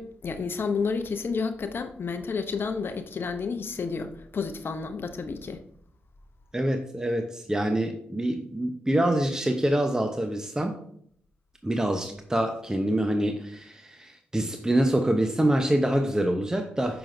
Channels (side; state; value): both; normal; correlation 0.89